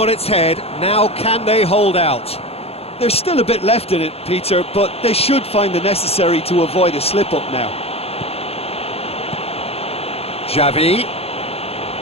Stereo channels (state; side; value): late; right; 0.29 ms